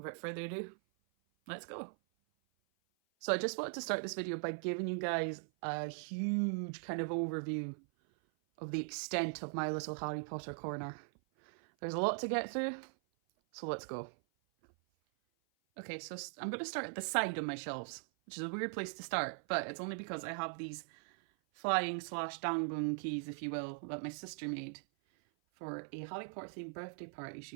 without further ado, let's go. So I just wanted to start this video by giving you guys a huge kind of overview of the extent of my little Harry Potter corner. There's a lot to get through, so let's go. Okay, so I'm going to start at the side of my shelves, which is a weird place to start, but it's only because I have these flying / dangling keys, if you will, that my sister made for a Harry Potter themed birthday party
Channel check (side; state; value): left; silent; 51 dB below the other